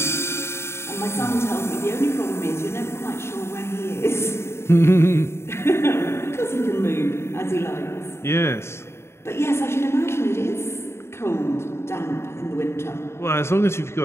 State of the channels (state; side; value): late; right; 0.12 ms